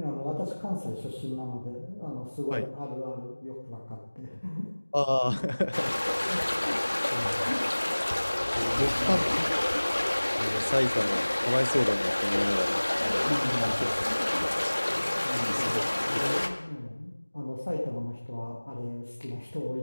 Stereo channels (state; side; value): inverted; both; correlation -1.00